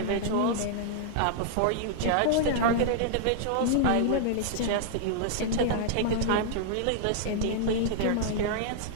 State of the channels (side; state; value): both; different; correlation -0.01